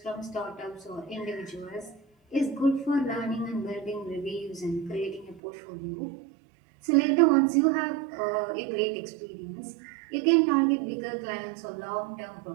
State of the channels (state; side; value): drops out; left; at 5.4 s